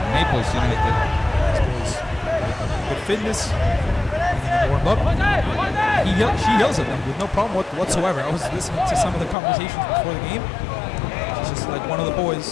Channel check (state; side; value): drops out; right; at 9.3 s